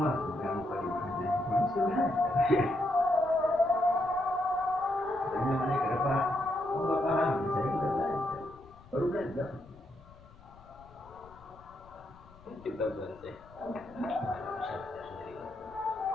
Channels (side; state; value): left; noise; rumble, 23 dB below the sound